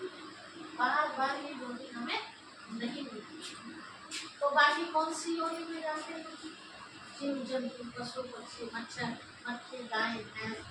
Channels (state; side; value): identical; both; correlation 1.00